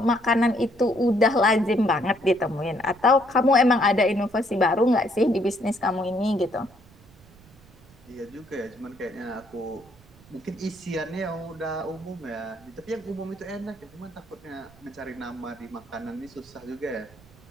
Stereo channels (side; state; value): right; noise; rumble, 25 dB below the sound